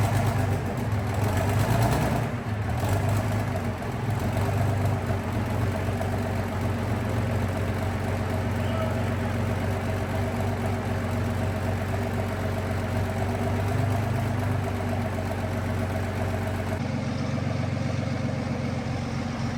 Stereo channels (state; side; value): identical; both; correlation 1.00